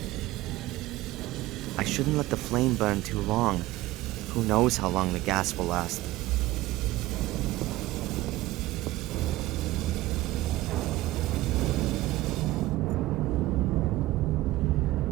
I shouldn't let the flame burn too long. Who knows how long the gas will last.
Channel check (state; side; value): quieter; left; 17.5 dB